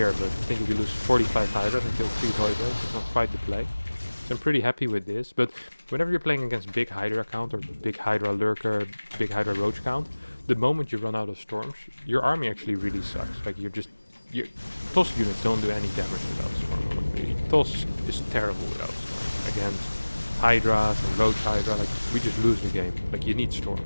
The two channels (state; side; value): inverted; both; correlation -1.00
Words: but I think if you lose 45 Hydras and kill 3 Voidras, it's not quite the play. So I'm pretty happy with this, but whenever you're playing against big Hydra count, or big Hydra lurker, big Hydra roach count, the moment you run out of storms, your army actually really sucks. Like your toss units don't do any damage without storm. Honestly. Toss is terrible without storm. Against Hydras and roach Hydra, like we just lose the game. Like you need storm,